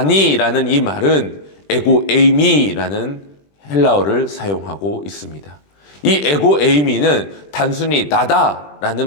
이 말은 에고 에이미라는 헬라어를 사용하고 있습니다. 이 에고 에이미는 단순히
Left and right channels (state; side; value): late; right; 20 ms